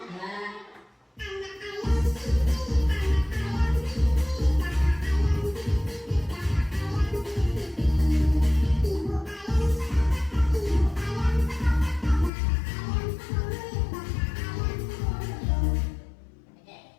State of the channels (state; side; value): drops out; right; at 12.3 s